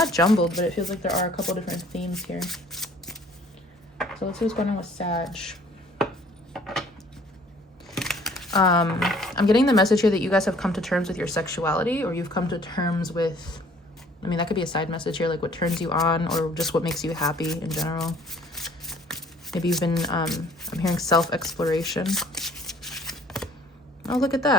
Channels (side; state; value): both; normal; correlation 0.56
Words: jumbled, but it feels like there are a couple different themes here. So let's see what's going on with Sag. I'm getting the message here that you guys have come to terms with your sexuality, or you've come to terms with, I mean, that could be a side message here, like what turns you on, or just what makes you happy in general. Maybe you've been, I'm hearing self-exploration. Oh, look at